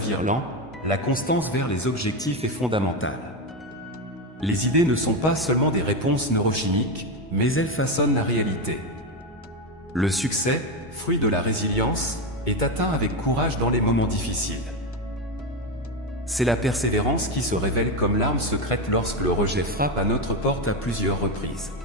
lent, la constance vers les objectifs est fondamentale. Les idées ne sont pas seulement des réponses neurochimiques, mais elles façonnent la réalité. Le succès, fruit de la résilience, est atteint avec courage dans les moments difficiles. C'est la persévérance qui se révèle comme l'arme secrète lorsque le rejet frappe à notre porte à plusieurs reprises.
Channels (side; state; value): both; normal; correlation 0.13